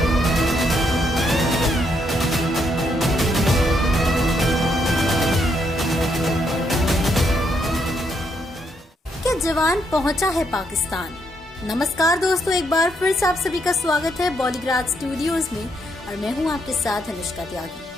क्या जवान पहुंचा है पाकिस्तान। नमस्कार दोस्तों, एक बार फिर से आप सभी का स्वागत है बॉलीग्राड स्टूडियोज में और मैं हूं आपके साथ अनुष्का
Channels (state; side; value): normal; both; correlation 0.75